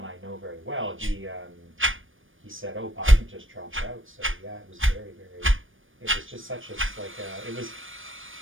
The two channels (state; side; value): late; left; 0.58 ms